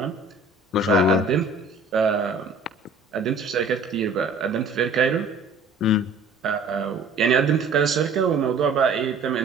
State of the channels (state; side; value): quieter; left; 3.3 dB